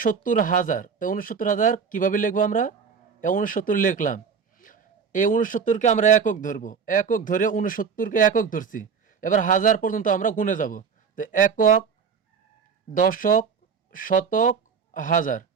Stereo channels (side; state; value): left; quieter; 6.2 dB